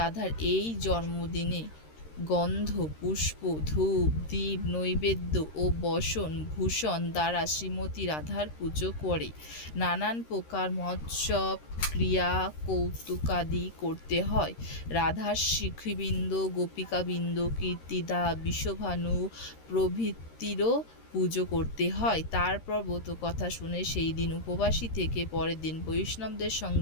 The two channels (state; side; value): late; right; 13 ms